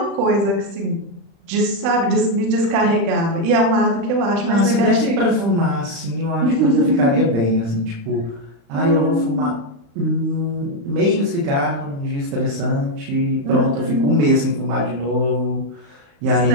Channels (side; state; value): left; late; 35 ms